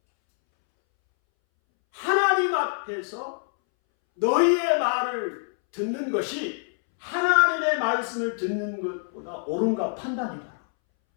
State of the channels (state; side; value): silent; right; 61 dB below the other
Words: 하나님 앞에서 너희의 말을 듣는 것이 하나님의 말씀을 듣는 것보다 옳은가 판단해봐라.